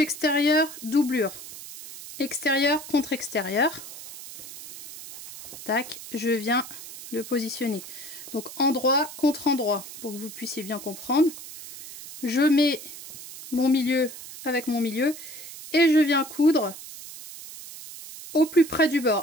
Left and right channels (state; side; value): noise; right; hiss, 13 dB below the sound